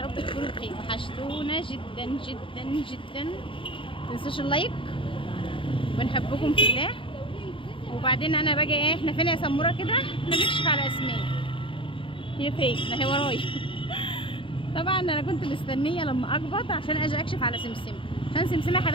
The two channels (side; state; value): right; late; 0.25 ms